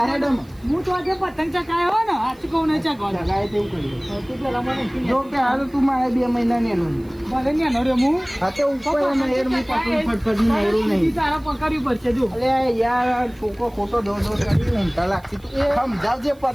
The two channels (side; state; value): right; noise; hiss, 30 dB below the sound